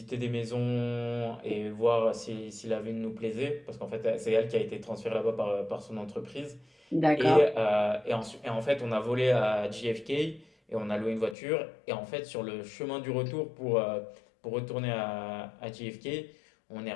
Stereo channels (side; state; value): right; drops out; at 11.4 s